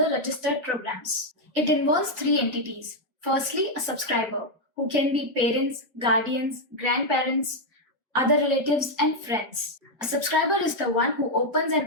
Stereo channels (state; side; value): normal; both; correlation 0.00